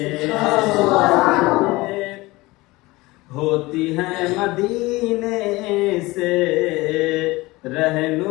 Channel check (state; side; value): quieter; right; 21.1 dB